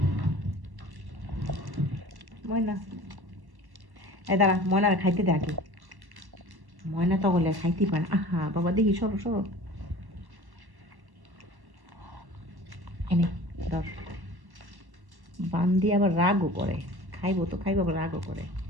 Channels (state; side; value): late; left; 1.1 ms